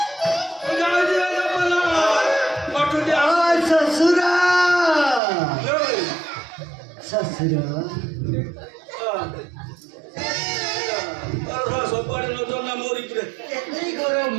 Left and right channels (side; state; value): left; drops out; at 5.2 s